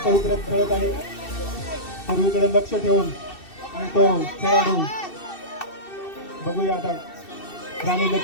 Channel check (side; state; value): right; late; 2.7 ms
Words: पवित्र्यात खेळत आहे, सर्वीकडे लक्ष ठेवून. आणि तो खेळाडू बघूया आता राणी